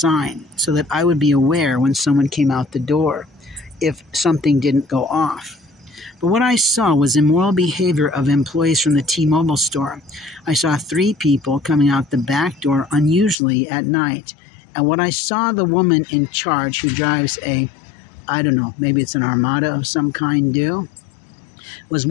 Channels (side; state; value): right; drops out; at 13.4 s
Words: so that I would be aware when someone came out the door if something didn't go off. But what I saw was immoral behavior of employees from the T-Mobile store. I saw 3 people coming out the back door unusually at night. And what I saw the woman in charge who drives I don't know, maybe it's an Armada of some kind do, was